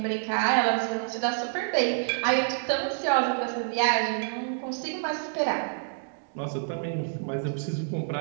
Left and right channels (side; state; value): left; silent; digital silence